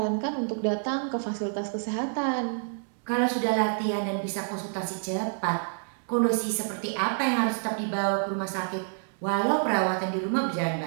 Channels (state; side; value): silent; left; digital silence